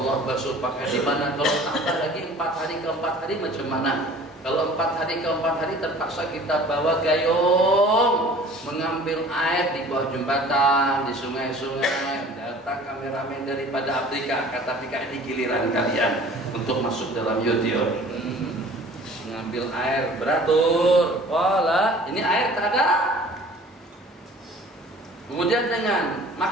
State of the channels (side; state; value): both; normal; correlation 0.47